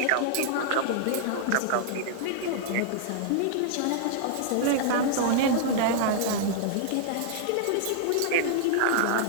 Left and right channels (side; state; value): both; different; correlation -0.01